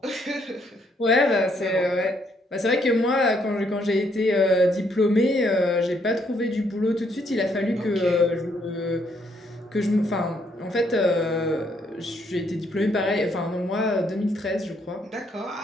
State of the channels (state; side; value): normal; both; correlation 0.71